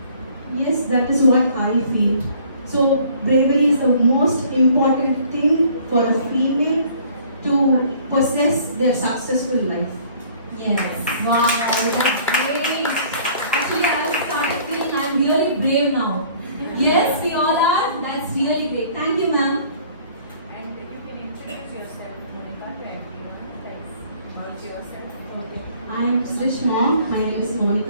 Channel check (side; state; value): both; inverted; correlation -0.56